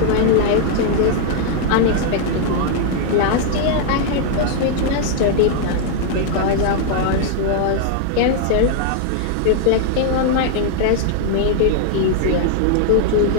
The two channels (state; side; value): different; both; correlation -0.01